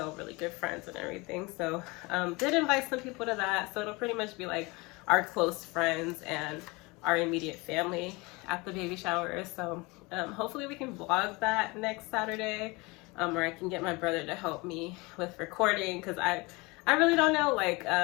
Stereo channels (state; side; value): quieter; right; 25.3 dB